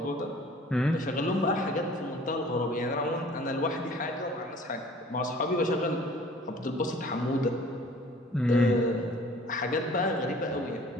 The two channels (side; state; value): both; normal; correlation 0.50